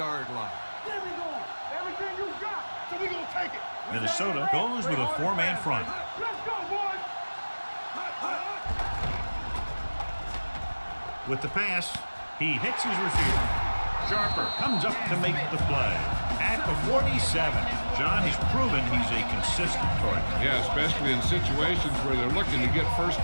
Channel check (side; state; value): both; inverted; correlation -1.00